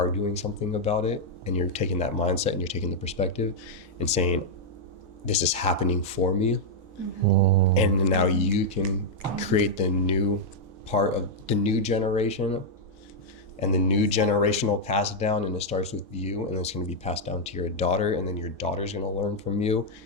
doing something about it. And you're taking that mindset and you're taking the perspective and saying, this is happening for me. And now you can create the new part of the new generation and the new generational pass down, and it starts with you, and it's going to be passed down to your daughter, and then your daughter's going to learn from you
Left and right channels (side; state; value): both; normal; correlation -0.03